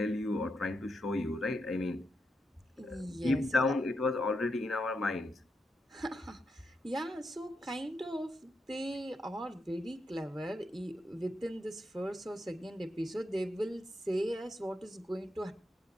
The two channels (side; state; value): both; normal; correlation 0.83